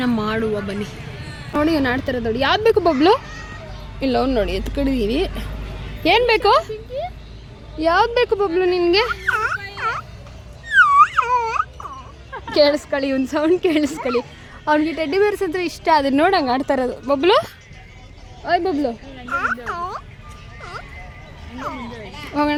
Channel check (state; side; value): identical; both; correlation 1.00